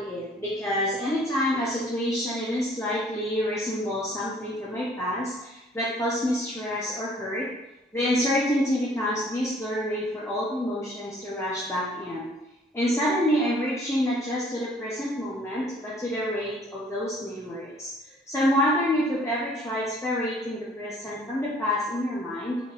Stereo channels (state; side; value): normal; both; correlation 0.57